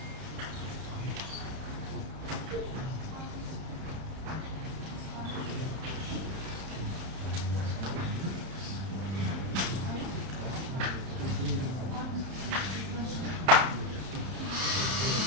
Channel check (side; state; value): left; late; 31 ms